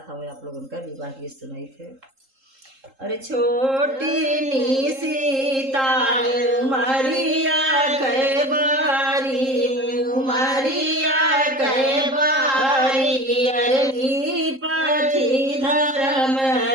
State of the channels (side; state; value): left; late; 3.7 ms